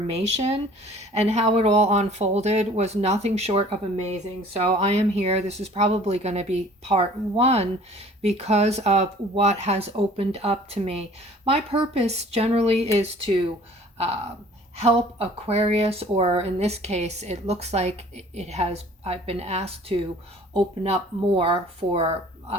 and how it all unfolded was nothing short of amazing. So I am here. This is probably going to be part one because of what has opened up to me. My purpose generally is to help Aquarius, or in this case, it looks like I've been asked to open up more for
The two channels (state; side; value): normal; both; correlation 0.51